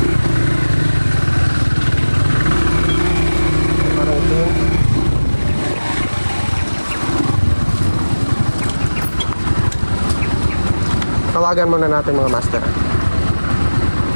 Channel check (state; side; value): inverted; both; correlation -1.00